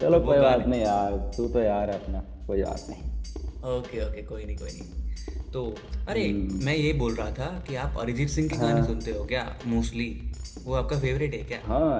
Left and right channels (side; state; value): both; identical; correlation 1.00